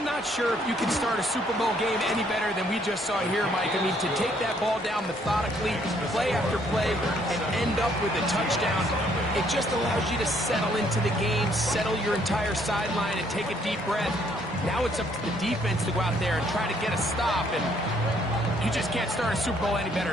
not sure if you can start a Super Bowl game any better than we just saw here, Mike. I mean, to take that ball down methodically, play after play, and end up with a touchdown, it just allows you to settle into the game, settle your entire sideline, and take a deep breath. Now it's up to the defense to go out there and try to get a stop, and you just can't start a Super Bowl any better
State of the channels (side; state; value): both; normal; correlation 0.67